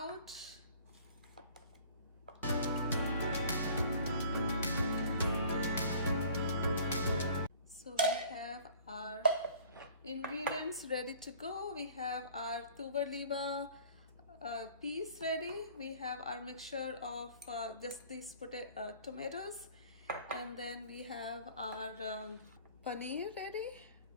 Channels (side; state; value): both; inverted; correlation -0.50